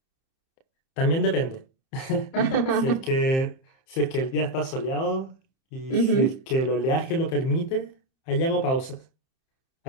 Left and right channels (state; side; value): late; right; 30 ms